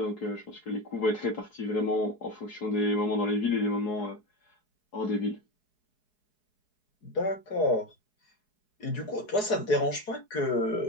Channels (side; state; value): right; late; 4.7 ms